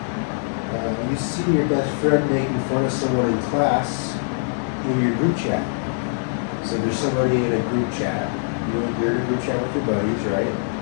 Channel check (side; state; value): right; silent; digital silence